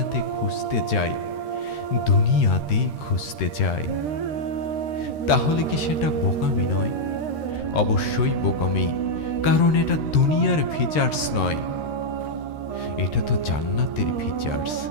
খুঁজতে যাই, তাহলে কি সেটা বোকামি নয়? অবশ্যই বোকামি, কারণ এটা দুনিয়ার ফিচার্স নয়, এটা তো জান্নাতের ফিচার্স।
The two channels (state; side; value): late; right; 13 ms